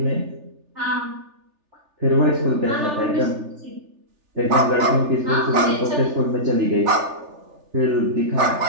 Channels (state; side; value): late; left; 3.4 ms